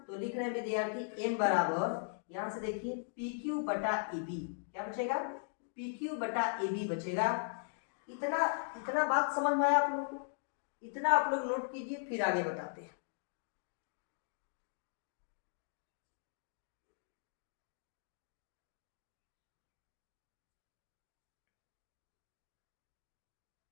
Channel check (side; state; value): right; silent; digital silence